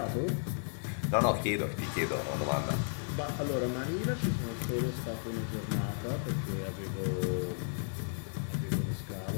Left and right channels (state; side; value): silent; right; digital silence